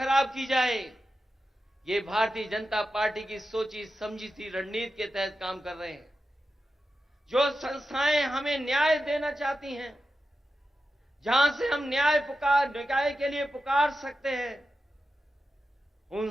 की जाए, ये भारतीय जनता पार्टी की सोची समझी सी रणनीति के तहत काम कर रहे हैं। जो संस्थाएं हमें न्याय देना चाहती हैं, जहां से हम न्याय के लिए पुकार सकते हैं,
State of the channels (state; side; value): normal; both; correlation 0.91